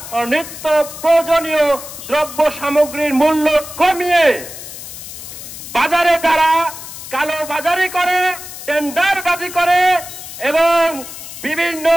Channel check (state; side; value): noise; left; hiss, 12 dB below the sound